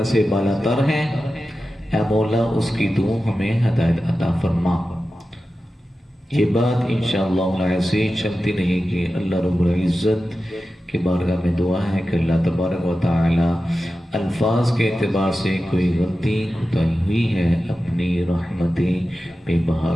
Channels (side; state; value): both; normal; correlation 0.93